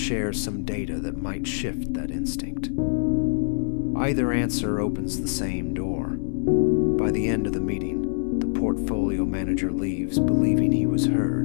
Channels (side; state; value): right; silent; 58 dB below the other